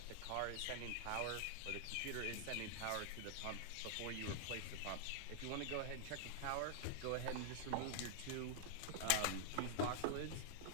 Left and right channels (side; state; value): both; different; correlation -0.01